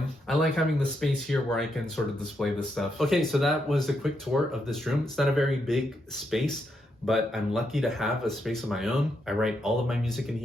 I like having the space here where I can sort of display this stuff. Okay, so that was a quick tour of this room. It's not a very big space, but I'm lucky to have a space of my own. I write all of my music in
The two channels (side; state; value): both; normal; correlation 0.80